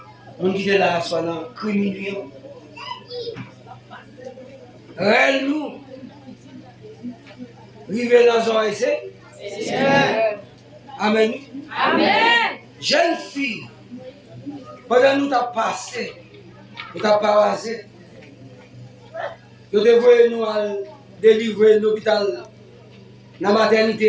On dit de la soie dans criminel. Nous, rive dans un essai. Amen. Amen. Jeune fille, pendant nous t'as passé, nous t'as passé, nous devons nous délivrer l'hôpital, la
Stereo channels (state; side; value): identical; both; correlation 1.00